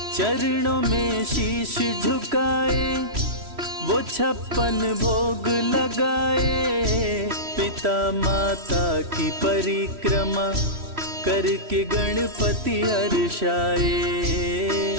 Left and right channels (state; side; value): late; left; 3.1 ms